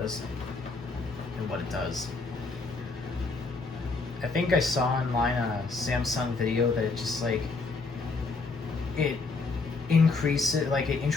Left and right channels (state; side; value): quieter; right; 3.9 dB